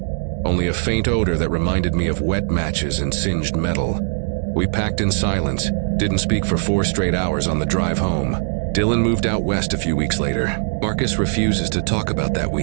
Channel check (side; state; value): left; silent; 66 dB below the other